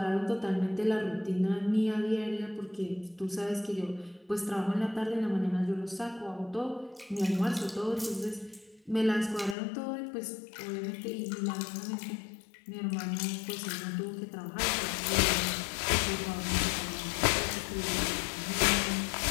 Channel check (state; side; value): drops out; right; at 9.6 s